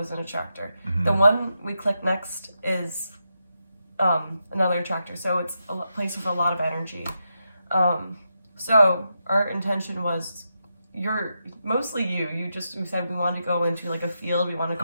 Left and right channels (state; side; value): inverted; both; correlation -0.86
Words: an attractor. Mhm. The one we click next is another attractor. So it's a place with a lot of energy. So our intention was, mostly you said we wanted to go into like a field. We want to I